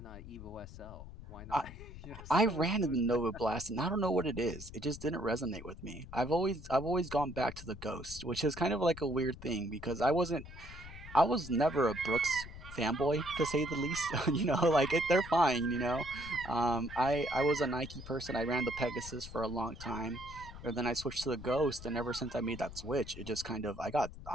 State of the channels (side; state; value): left; noise; rumble, 13 dB below the sound